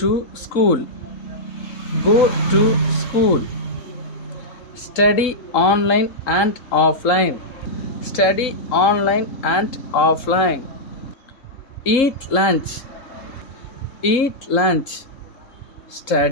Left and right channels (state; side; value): late; right; 3.7 ms